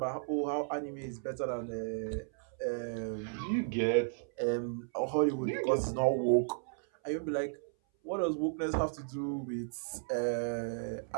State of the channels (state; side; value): silent; left; 55 dB below the other